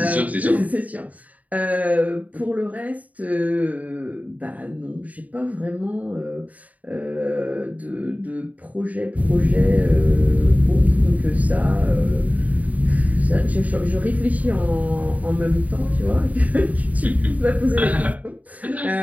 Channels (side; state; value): left; late; 0.072 ms